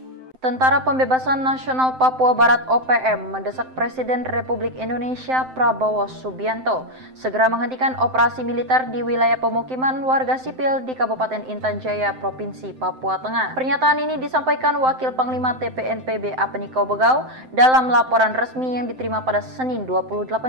Tentara Pembebasan Nasional Papua Barat OPM mendesak Presiden Republik Indonesia Prabowo Subianto segera menghentikan operasi militer di wilayah pemukiman warga sipil di Kabupaten Intan Jaya, Provinsi Papua Tengah. Pernyataan ini disampaikan Wakil Panglima TPNPB Apeniko Bogau dalam laporan resmi yang diterima pada Senin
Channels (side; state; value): left; late; 7.7 ms